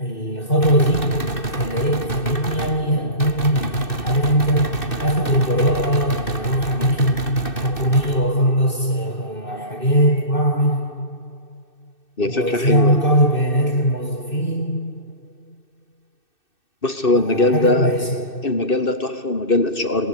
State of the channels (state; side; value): late; right; 2.6 ms